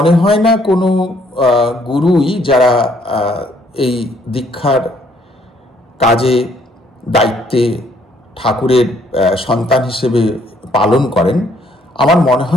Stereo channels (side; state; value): both; normal; correlation 0.66